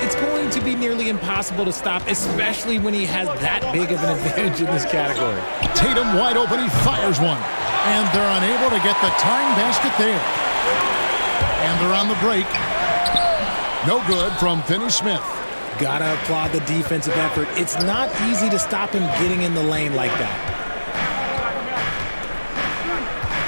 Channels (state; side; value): inverted; both; correlation -1.00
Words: it's going to be nearly impossible to stop, especially when he has that big of an advantage in this category. Tatum wide open, he fires one. And they're unable to get the tying basket there. And they're on the break. No good from Finney-Smith. Gotta applaud the defensive effort. It's not easy to stop him getting in the lane like that.